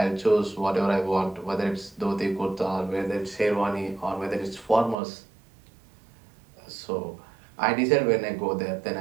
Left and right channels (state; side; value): drops out; left; at 5.0 s